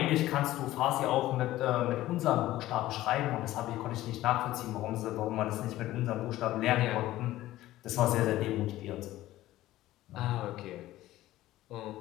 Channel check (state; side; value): quieter; right; 15.5 dB